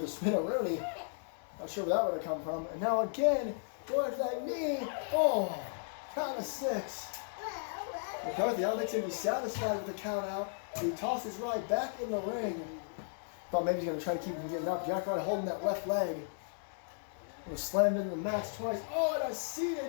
spin-a-rooney. Not sure where that would have come from. And now again, going after that knee. Oh, count of 6. McCarthy, I don't think he's going to be satisfied with the count out. He tosses Rye back in the ring. Thought maybe he's going to try to keep him getting up. Jack Rye holding that left leg. Was slammed into the mats twice. Oh, and a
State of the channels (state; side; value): silent; right; digital silence